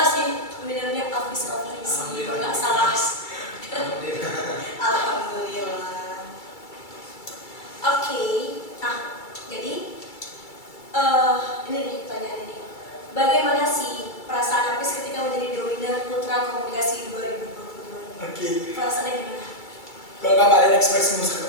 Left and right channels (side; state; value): right; late; 2.3 ms